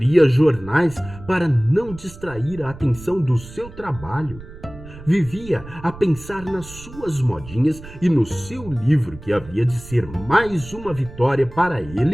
jornais para não distrair a atenção do seu trabalho. Vivia a pensar nas suas modinhas e no seu livro que havia de ser mais uma vitória para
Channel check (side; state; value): right; noise; rumble, 16 dB below the sound